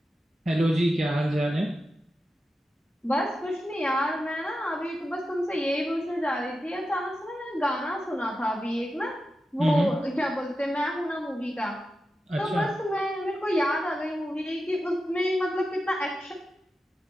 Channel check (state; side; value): normal; both; correlation 0.90